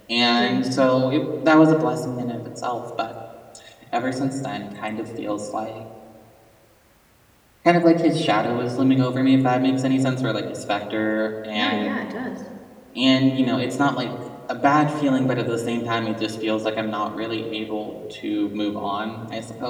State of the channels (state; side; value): identical; both; correlation 1.00